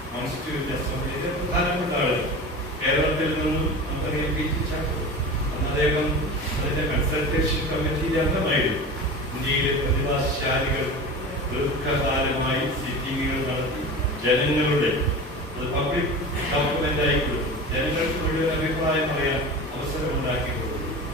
കോൺസ്റ്റിറ്റ്യൂന്റ് അസംബ്ലിയിലെ പ്രധാനപ്പെട്ട ആളുകൾ. കേരളത്തിൽ നിന്നും നമുക്കറിയാം പി ടി ചാക്കോ, അന്ന് അദ്ദേഹം അതിന്റെ കൺസൾട്ടേഷൻ കമ്മിറ്റിയിലെ അംഗമായിരുന്നു. ഇന്ത്യയിലെ പ്രതിഭാശാലികൾ ദീർഘകാലമായി സിറ്റിംഗുകൾ നടത്തി ജനങ്ങളുടെ പബ്ലിക് ഡോക്യുമെന്റ് ആയി കൊടുത്തു, ജനങ്ങൾക്ക് മുഴുവൻ അഭിപ്രായം പറയാൻ അവസരം ഉണ്ടാക്കി കൊടുത്തു.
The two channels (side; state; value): both; normal; correlation 0.32